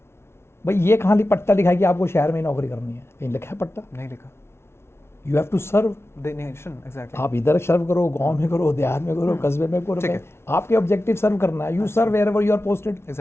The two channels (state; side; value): late; right; 0.12 ms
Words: भाई ये कहाँ पट्टा लिखा है कि आपको शहर में ही नौकरी करनी है? कहीं लिखा है पट्टा? नहीं लिखा। You have to serve. The nation, exactly. आप इधर सर्व करो, गांव में करो, देहात में करो, कस्बे में करो, ठीक है। आपके ऑब्जेक्टिव सर्व करना है। You serve wherever you are posted.